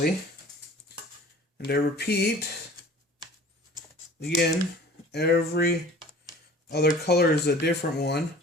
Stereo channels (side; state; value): both; normal; correlation 0.46